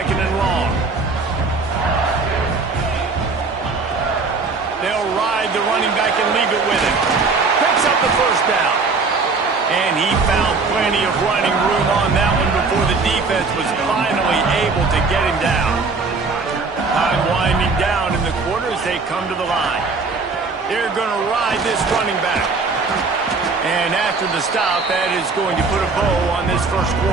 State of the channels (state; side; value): quieter; left; 4.2 dB